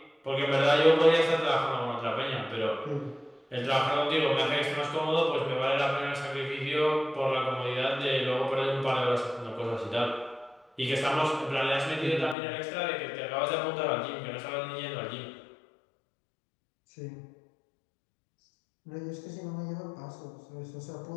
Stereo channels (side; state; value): right; drops out; at 12.4 s